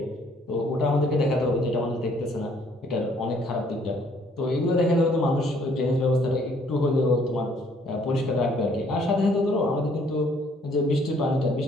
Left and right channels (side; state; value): both; normal; correlation 0.63